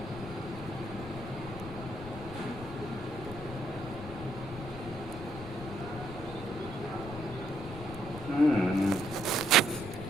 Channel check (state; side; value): noise; left; rumble, 11 dB below the sound